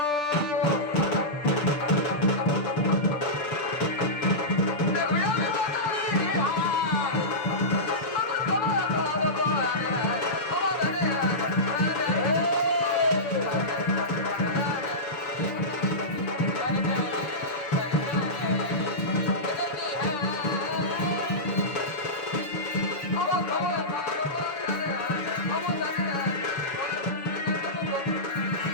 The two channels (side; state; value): right; late; 7.2 ms